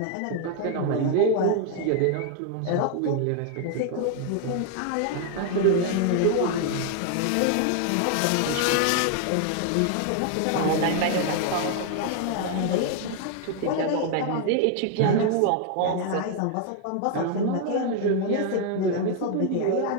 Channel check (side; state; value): both; different; correlation 0.00